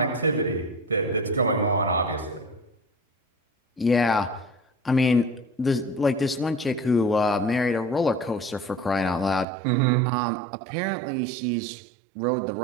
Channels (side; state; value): left; drops out; at 9.5 s